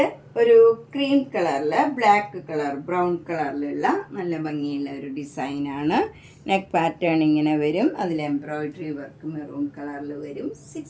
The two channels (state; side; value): identical; both; correlation 1.00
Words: ഒരു ക്രീം കളറിൽ ബ്ലാക്ക് കളർ ബ്രൗൺ കളറിലുള്ള നല്ല ഭംഗിയുള്ള ഒരു ഡിസൈനാണ്. നെക്ക് പാറ്റേൺ ഇങ്ങനെ വരും. അതിൽ എംബ്രോയിഡറി വർക്ക് മെറൂൺ കളറിൽ വരും.